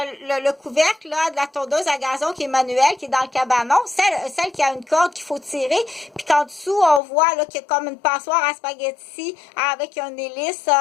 le couvercle là, de la tondeuse à gazon qui est manuelle, qui est dans le cabanon, celle qui a une corde qu'il faut tirer, puis qu'en dessous, on voit là qu'il y a comme une passoire à spaghetti avec une hélice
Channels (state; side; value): drops out; right; at 7.0 s